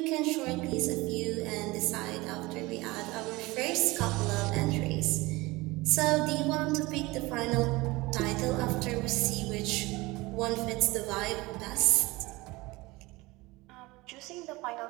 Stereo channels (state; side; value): quieter; left; 21.8 dB